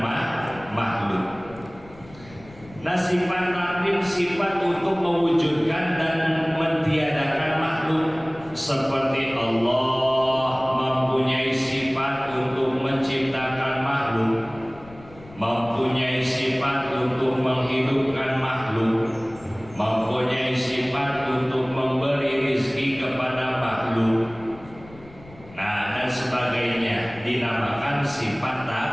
makhluk. Nah sifat takwin sifat untuk mewujudkan dan mentiadakan makhluk, seperti Allah mempunyai sifat untuk menciptakan makhluk, mempunyai sifat untuk menghidupkan makhluk, mempunyai sifat untuk memberi rezeki kepada makhluk, nah dan sebagainya, dinamakan sifat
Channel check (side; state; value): left; noise; rumble, 21 dB below the sound